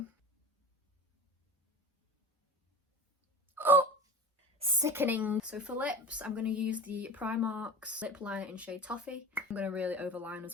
Oh, sickening. So for lips, I'm going to use the Primark's lip liner in shade Toffee. I'm going to really overline as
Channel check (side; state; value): both; normal; correlation 0.34